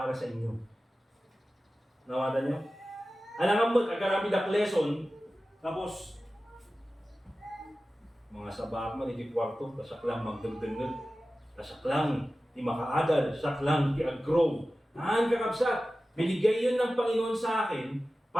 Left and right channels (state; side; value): normal; both; correlation 0.95